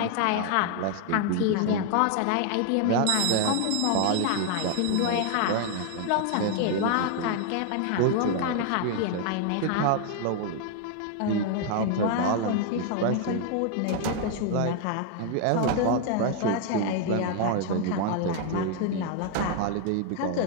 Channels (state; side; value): different; both; correlation 0.00